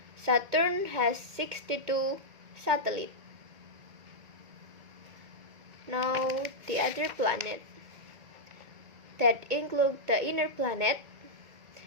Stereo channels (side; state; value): left; late; 2.2 ms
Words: Saturn has 62 satellites. Now the other planet that include the inner planet